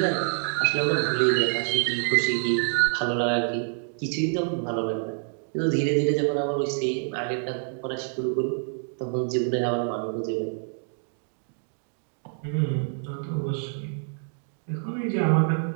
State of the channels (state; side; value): silent; left; 60 dB below the other